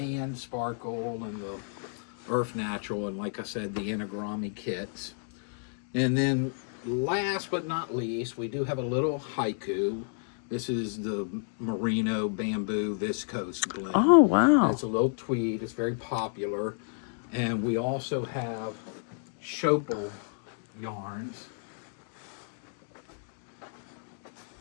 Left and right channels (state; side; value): silent; right; digital silence